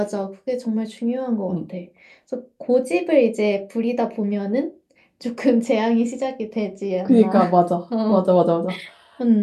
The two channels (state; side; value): identical; both; correlation 1.00